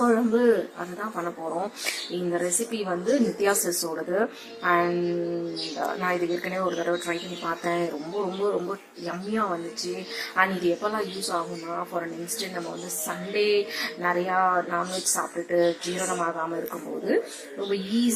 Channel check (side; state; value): both; identical; correlation 1.00